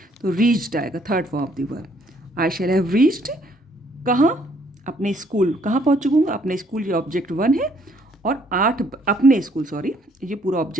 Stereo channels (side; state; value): both; normal; correlation 0.66